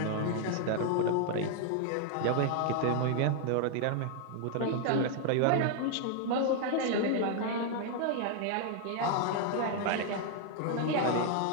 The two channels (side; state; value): both; different; correlation 0.00